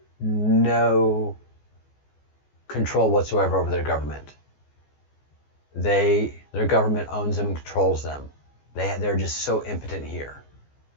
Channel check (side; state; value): right; late; 14 ms